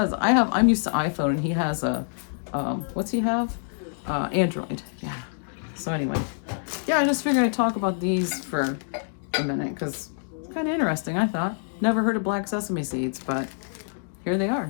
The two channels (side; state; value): right; silent; digital silence